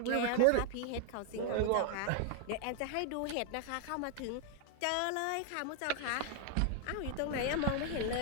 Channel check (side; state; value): both; different; correlation 0.00